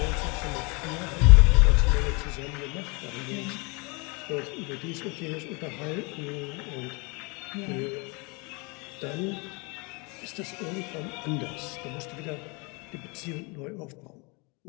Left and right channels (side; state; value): right; quieter; 29.5 dB